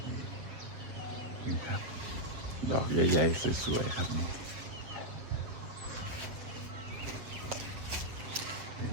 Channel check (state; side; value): late; left; 8.0 ms